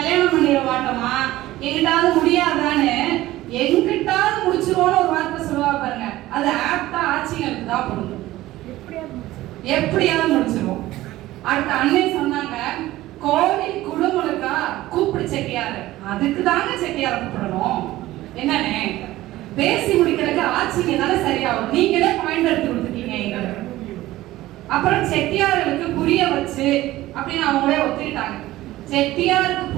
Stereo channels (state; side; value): quieter; left; 16.4 dB